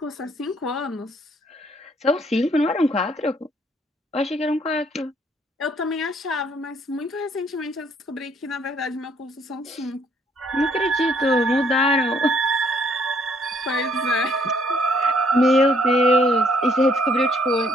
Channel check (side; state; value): both; normal; correlation 0.66